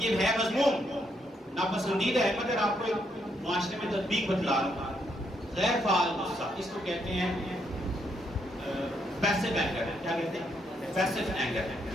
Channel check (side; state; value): both; normal; correlation 0.76